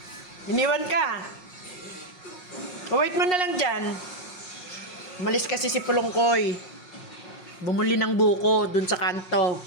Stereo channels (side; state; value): right; late; 5.5 ms